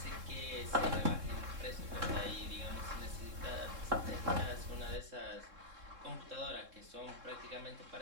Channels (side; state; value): left; late; 3.7 ms